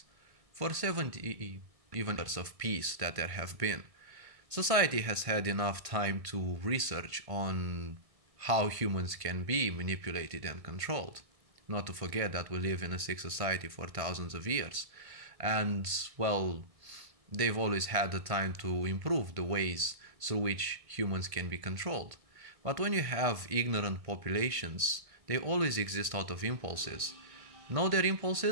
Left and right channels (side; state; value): left; late; 1.5 ms